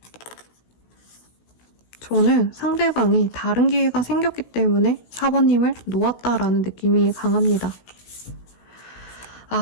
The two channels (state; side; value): late; right; 17 ms